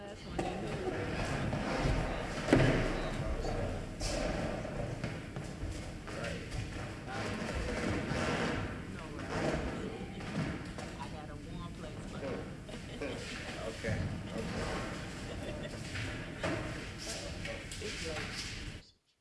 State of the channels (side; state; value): both; identical; correlation 1.00